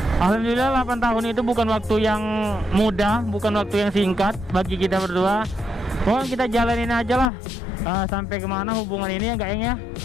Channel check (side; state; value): right; drops out; at 7.3 s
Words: Alhamdulillah 8 tahun itu bukan waktu yang mudah, bukan waktu yang singkat bagi kita berdua. Pokoknya kita jalanin aja lah sampai kemana hubungan ini ya, gak ya.